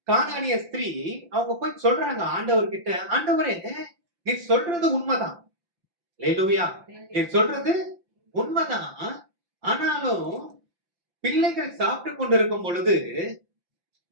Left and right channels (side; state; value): left; late; 5.8 ms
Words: கானானிய ஸ்திரீ அவங்க போய் சொல்றாங்க ஆண்டவர்கிட்ட, ஆண்டவரே, நீ சொல்றது உண்மைதான், அல்லேலூயா, நீ சொல்றது உண்மைதான், ஆனாலும் பிள்ளைகள் சாப்பிட்டு கொண்டிருக்கும் பொழுது